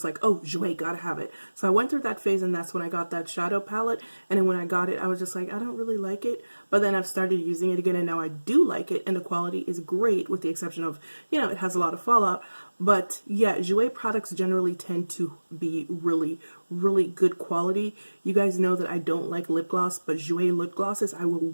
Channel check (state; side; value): inverted; both; correlation -1.00